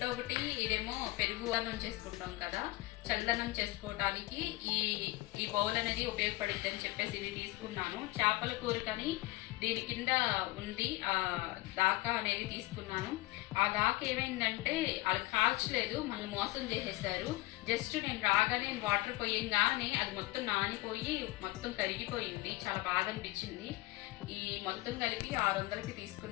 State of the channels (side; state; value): right; quieter; 20.0 dB